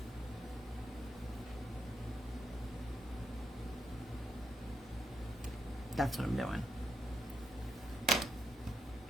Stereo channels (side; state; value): both; normal; correlation 0.80